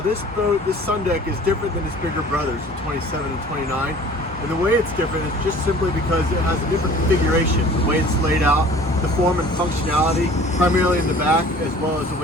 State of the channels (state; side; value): normal; both; correlation 0.47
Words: boat, this sun deck is different than its bigger brothers, the 27 and 29. And the way it's different is just simply because it has a different configuration. The way it's laid out, the form and functionality, primarily in the back, as well as the